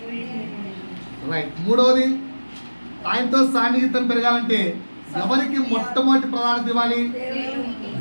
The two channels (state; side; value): inverted; both; correlation -1.00